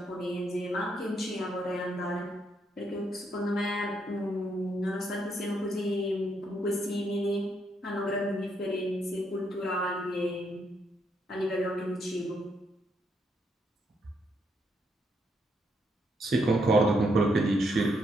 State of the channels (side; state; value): both; normal; correlation 0.76